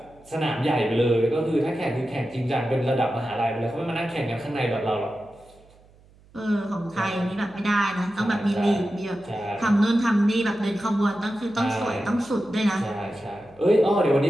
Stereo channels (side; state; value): right; noise; hum, 28 dB below the sound